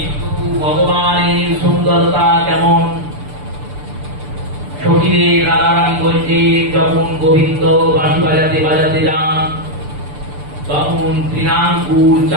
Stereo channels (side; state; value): left; late; 6.8 ms